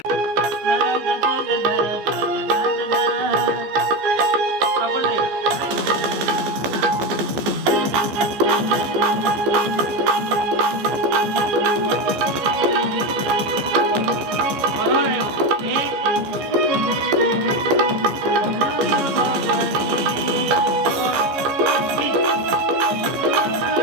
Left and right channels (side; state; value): left; late; 14 ms